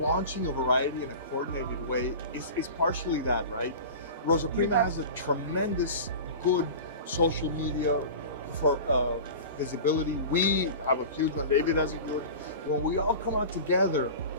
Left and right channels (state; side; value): inverted; both; correlation -0.34